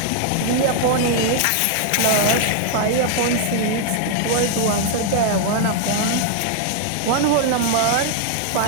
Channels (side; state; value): both; different; correlation 0.00